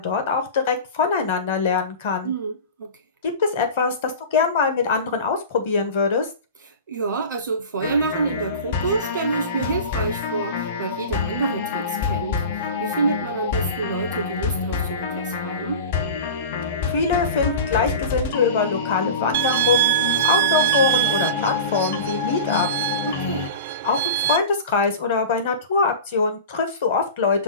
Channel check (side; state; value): both; inverted; correlation -0.32